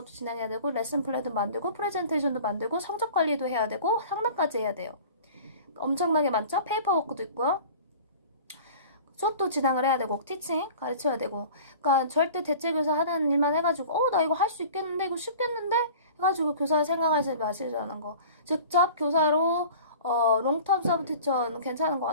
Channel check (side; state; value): both; inverted; correlation -0.42